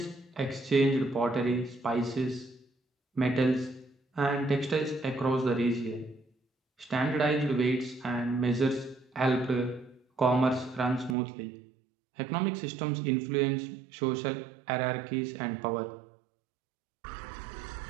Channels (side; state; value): left; drops out; at 11.2 s